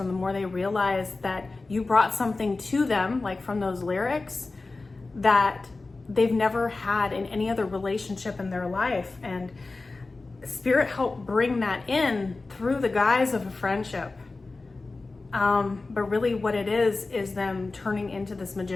the more they realized that you brought something to them, like from those lyrics, that they've never had in any other relationship in their life. And Spirit helped bring that in through the guise of a friendship. But really what it is them turning into this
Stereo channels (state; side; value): quieter; right; 3.5 dB